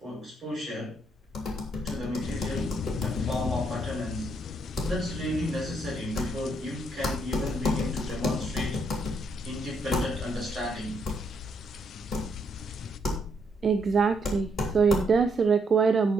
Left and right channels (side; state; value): both; normal; correlation 0.74